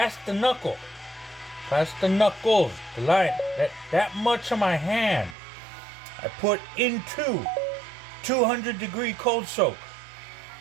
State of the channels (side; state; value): left; drops out; at 5.4 s